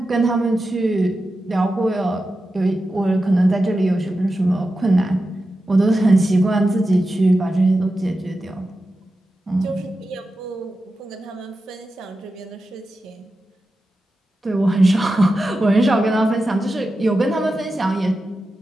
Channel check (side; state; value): both; normal; correlation 0.91